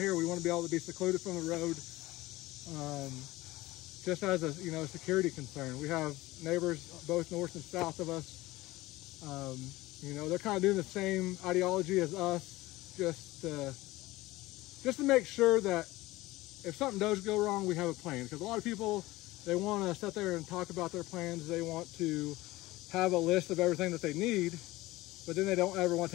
we want to be able to be secluded from the road, just as a, you know, security concern. We have neighbors both north and south of us. You know, they're kind of doing the same ideology as us, just to make sure that if something does go wrong, we have a plan. Because a lot of people, they want to sit there and talk about their plans. They want to have a list of everything that they need, but then they don't ever want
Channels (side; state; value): right; quieter; 18.9 dB